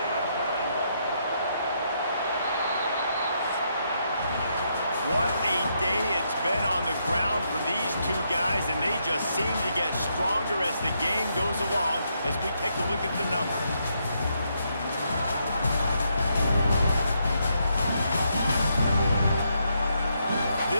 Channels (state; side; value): inverted; both; correlation -0.77